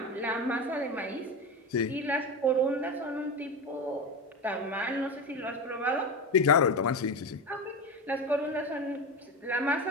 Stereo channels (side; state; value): both; normal; correlation 0.20